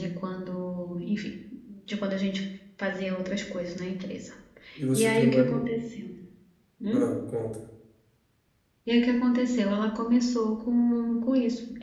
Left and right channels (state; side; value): identical; both; correlation 1.00